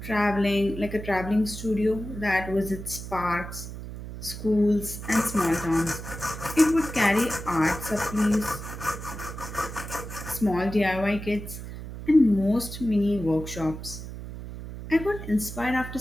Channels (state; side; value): noise; right; hum, 10 dB below the sound